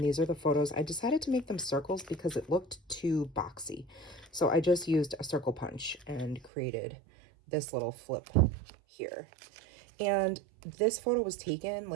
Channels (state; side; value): drops out; left; at 6.5 s